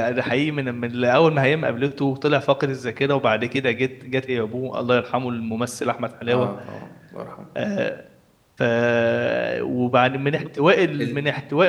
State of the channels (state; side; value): identical; both; correlation 1.00